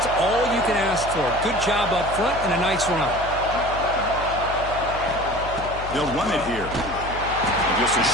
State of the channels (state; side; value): noise; left; hum, 11 dB below the sound